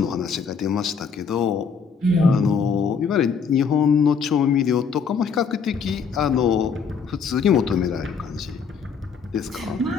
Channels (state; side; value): quieter; right; 5.9 dB